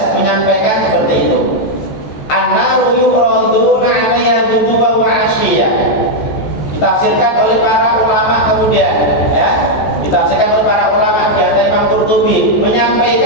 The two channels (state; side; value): late; right; 14 ms